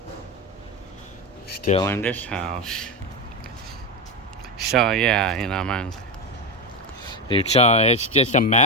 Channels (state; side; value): normal; both; correlation 0.15